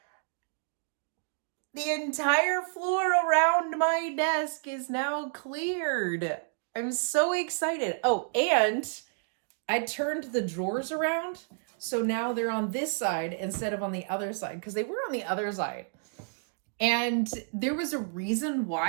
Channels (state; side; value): silent; left; digital silence